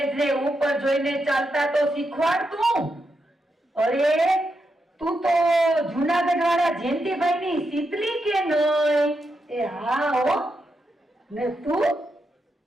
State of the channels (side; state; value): both; normal; correlation 0.85